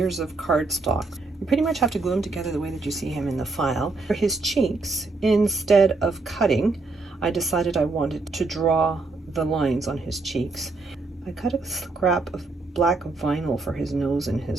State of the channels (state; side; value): quieter; left; 3.6 dB